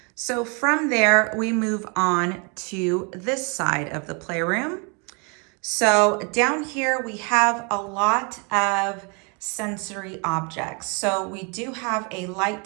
So from there, we move on to this side of the playroom. So down here, we have a lot of sensory objects. So we do have a light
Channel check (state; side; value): quieter; left; 33.9 dB